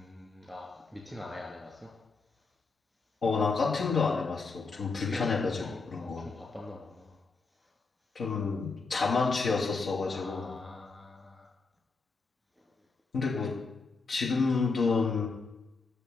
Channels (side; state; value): right; quieter; 4.2 dB